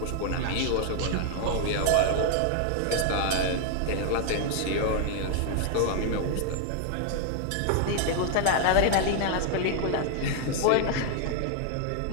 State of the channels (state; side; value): different; both; correlation 0.00